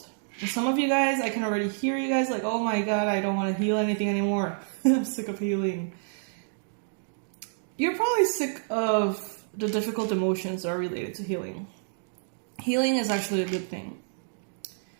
And some of you guys, I can already hear you guys like, oh my God, I don't want to heal anything anymore. I'm sick of healing. You're probably sick of the difficult emotions that are related to healing. Healing is actually a good thing.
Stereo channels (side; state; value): left; silent; digital silence